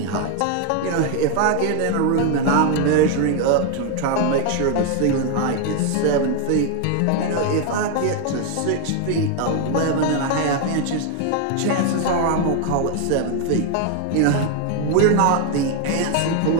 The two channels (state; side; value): different; both; correlation 0.00